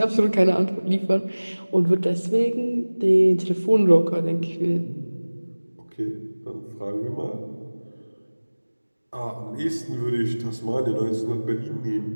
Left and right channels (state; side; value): inverted; both; correlation -1.00